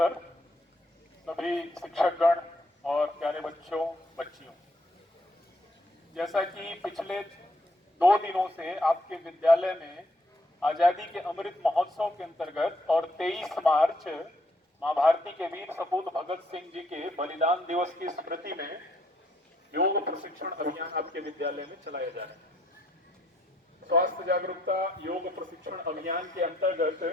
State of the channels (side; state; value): both; normal; correlation 0.70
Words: सभी शिक्षकगण और प्यारे बच्चों बच्चियों, जैसा कि पिछले 2 दिनों से आपके विद्यालय में आजादी के अमृत महोत्सव के अंतर्गत और 23 मार्च मां भारती के वीर सपूत भगत सिंह जी के बलिदान दिवस की स्मृति में योग प्रशिक्षण अभियान आपके विद्यालय में चलाया जा रहा है। स्वास्थ्य जागरूकता योग प्रशिक्षण अभियान के अंतर्गत